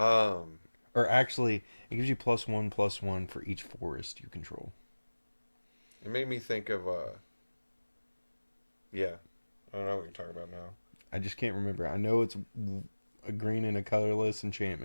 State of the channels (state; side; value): inverted; both; correlation -1.00